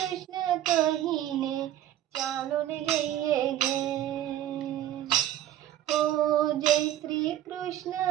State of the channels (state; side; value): quieter; left; 12.3 dB